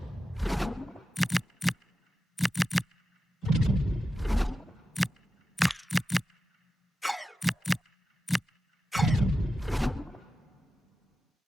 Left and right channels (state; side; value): normal; both; correlation 0.92